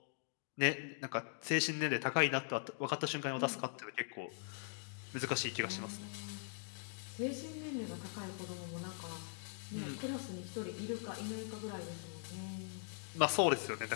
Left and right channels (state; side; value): silent; right; digital silence